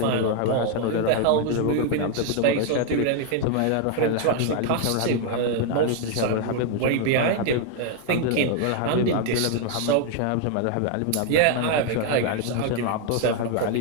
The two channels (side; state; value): both; different; correlation 0.00